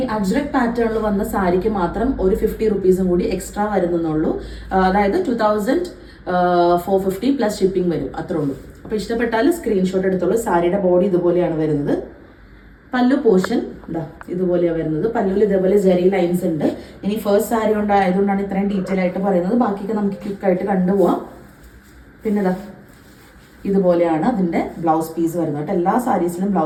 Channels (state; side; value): identical; both; correlation 1.00